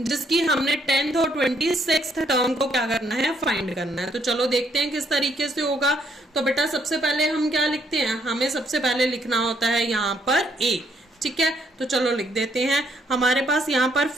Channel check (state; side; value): normal; both; correlation 0.70